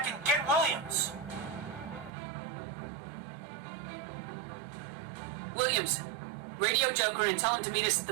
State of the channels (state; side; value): drops out; left; at 2.1 s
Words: and get Williams. Williams, radio Joker and tell him to meet us at the